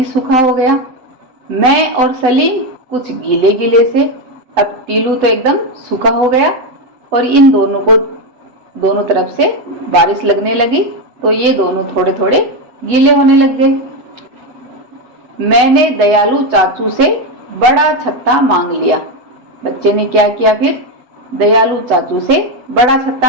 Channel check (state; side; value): late; left; 8.0 ms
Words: सूखा हो गया। मैं और सलीम कुछ गीले गीले से, अब टिल्लू तो एकदम सूखा हो गया और इन दोनों को दोनों तरफ से बारिश लगने लगी तो ये दोनों थोड़े थोड़े गीले होने लग गए। मैंने दयालु चाचू से बड़ा छत्ता मांग लिया। बच्चे ने क्या किया फिर? दयालु चाचू से बड़ा